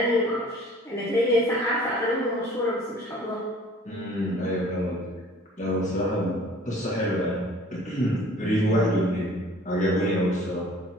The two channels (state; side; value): normal; both; correlation 0.51